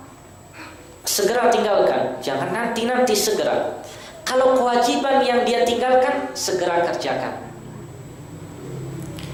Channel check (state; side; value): identical; both; correlation 1.00